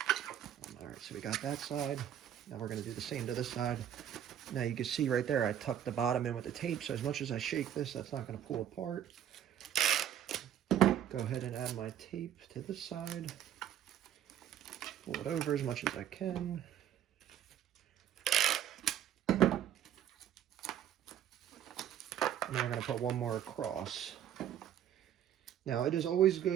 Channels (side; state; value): left; quieter; 10.3 dB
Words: All right, so we got that side. Now we're going to do the same to this side. Now you can see right there, I tucked the bottom in with the tape. So as much as I shake this, that's not going to pull apart. Go ahead and add my tape to this side. Pull it over as much as I can. And then we're going to put one more across. Now it is always